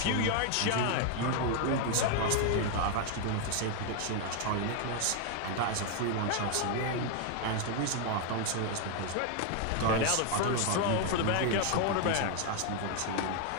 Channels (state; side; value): different; both; correlation 0.00